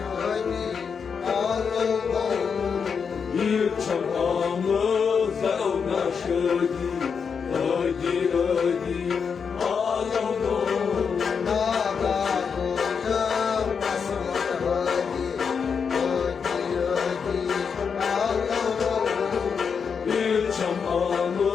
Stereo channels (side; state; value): right; quieter; 6.2 dB